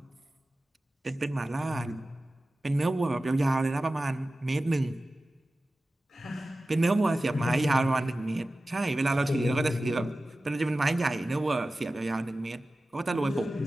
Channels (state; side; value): normal; both; correlation 0.95